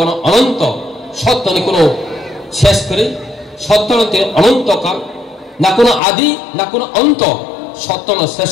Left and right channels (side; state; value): right; drops out; at 6.0 s